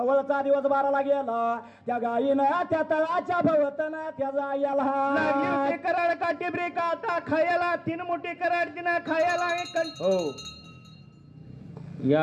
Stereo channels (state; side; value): identical; both; correlation 1.00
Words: दिवस 12ला गेला त्या गायीनं त्या तळाच्या भवतनं त्याचा लागली कराड काठी ब्रेका आता खायला 3 मोठी कराड तिनं खायला हो